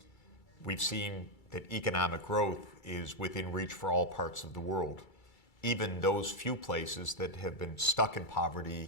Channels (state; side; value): late; right; 2.3 ms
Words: We've seen that economic growth is within reach for all parts of the world, even those few places that have been stuck in